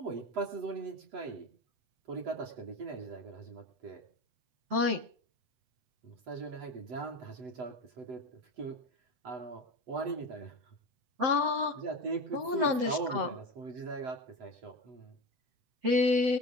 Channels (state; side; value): late; left; 7.7 ms